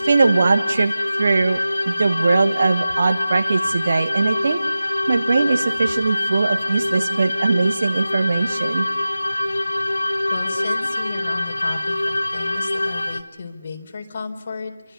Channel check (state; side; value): inverted; both; correlation -0.95